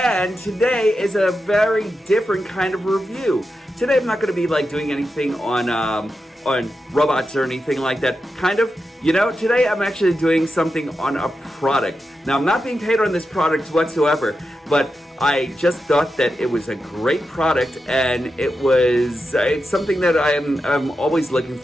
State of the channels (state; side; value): normal; both; correlation 0.89